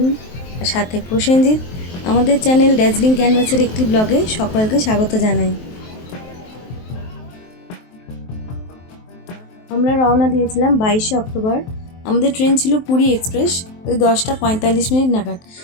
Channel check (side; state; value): right; late; 23 ms